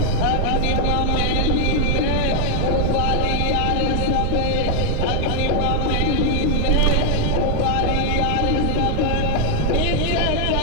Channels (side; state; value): both; different; correlation 0.00